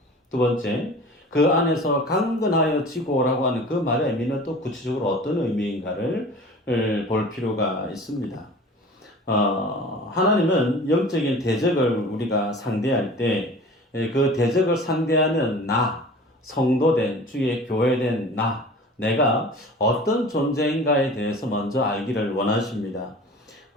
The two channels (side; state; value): both; normal; correlation 0.41